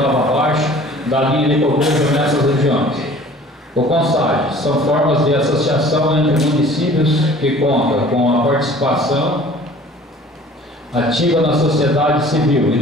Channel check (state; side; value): normal; both; correlation 0.49